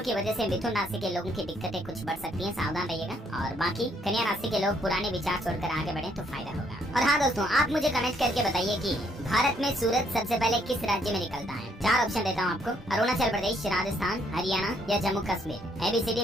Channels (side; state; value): both; normal; correlation 0.69